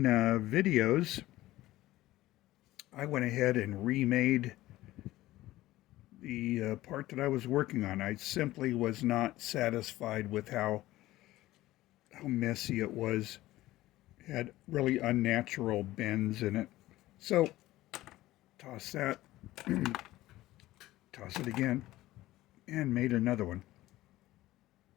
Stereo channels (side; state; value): right; quieter; 16.5 dB